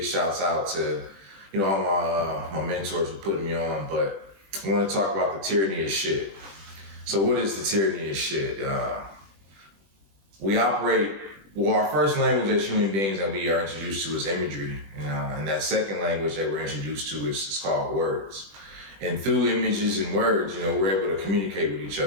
shouts out to all my mentors for putting me on. But I want to talk about the tyranny of shit. So what is the tyranny of shit? We operate. Well, our first language as human beings that we are introduced to is imagery, and that second language that we're introduced to is called words. And through images and words, we're able to communicate with each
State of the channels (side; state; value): left; late; 20 ms